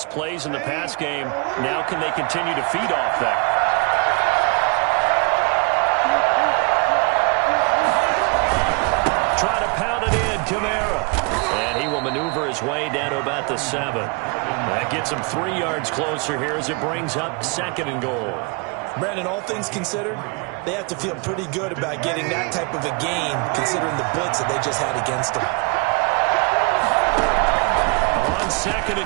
plays in the pass game. Now can they continue to feed off that? Try to pound it in, Kamara. And he will maneuver his way down to about the 7. That gets him 3 yards closer here as it brings up 2nd and goal. Brandon, all things considered, they have to feel pretty good about getting that type of a gain, considering the blitz that they just had against them. On 2nd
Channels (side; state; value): left; quieter; 33.1 dB